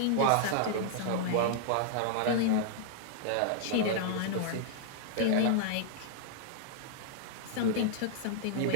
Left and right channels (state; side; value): different; both; correlation -0.01